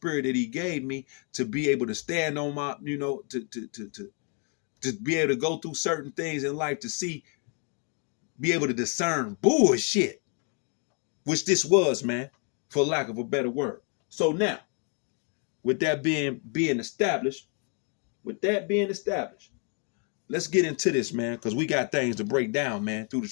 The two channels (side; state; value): right; quieter; 38.7 dB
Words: that he gave me to be able to stand on my, to be able to go through certain things in life to see, be able to discern bullshit, which this was, man, for lack of a better word. So now, with that being established, let's get into this, man, because we got things to break down, man, through the